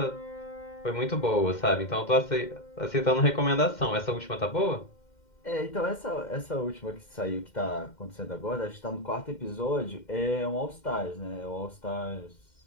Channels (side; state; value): right; late; 2.1 ms